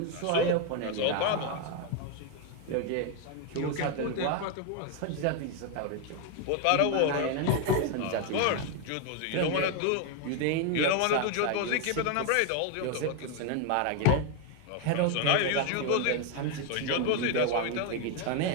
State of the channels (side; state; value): both; different; correlation 0.01